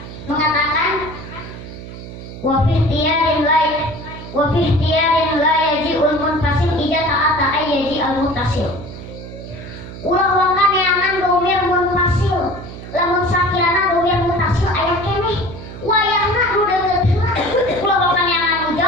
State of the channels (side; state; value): right; noise; hum, 12 dB below the sound